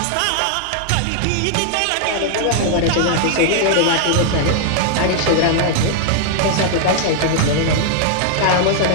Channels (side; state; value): both; different; correlation 0.00